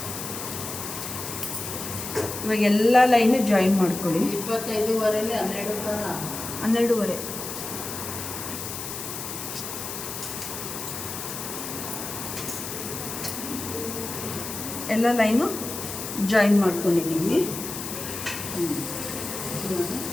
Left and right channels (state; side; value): noise; left; hiss, 7 dB below the sound